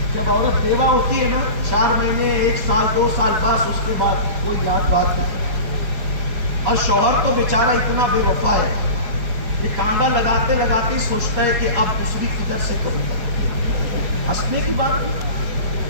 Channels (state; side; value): late; left; 4.7 ms